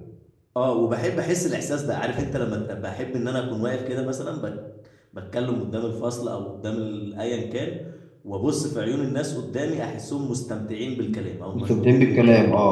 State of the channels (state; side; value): identical; both; correlation 1.00